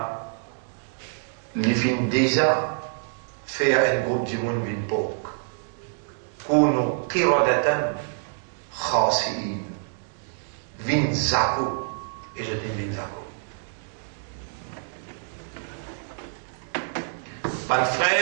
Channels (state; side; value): silent; left; digital silence